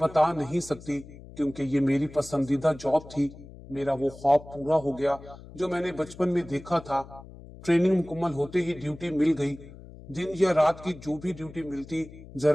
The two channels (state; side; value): noise; left; hum, 17 dB below the sound